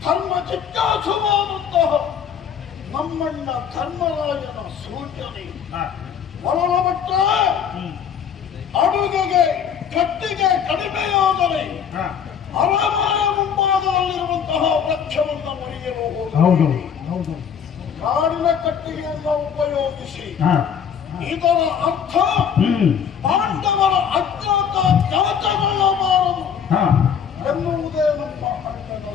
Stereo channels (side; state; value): right; quieter; 7.7 dB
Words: ಧರ್ಮ ಜಿಜ್ಞಾಸುವಾದಂತಹ ನಮ್ಮಣ್ಣ ಧರ್ಮರಾಜನ ಸೂಚನೆ ಒಳಮಟ್ಟ ಅಡುಗೆಗೆ ಕತ್ತಿಗೆ ಕಡಿಮೆಯಾದರೆ ಅರಮನೆಯ ಮುಂಭಾಗದಲ್ಲಿರುವಂತಹ ವೃಕ್ಷವನ್ನು ಮುರಿಯಲು ಹೋಗುವುದು. ಕಾಡಿನ ಕಟ್ಟಿಗೆಯನ್ನು ಉಪಯೋಗಿಸಿ ಇದರ ಅರ್ಥ ಪಾಂಡವರ ಅಜ್ಞಾತ ಜಾತಗೊಳ್ಳಬಾರದು ಎನ್ನುವುದೇ ನಮ್ಮ ಅಣ್ಣನ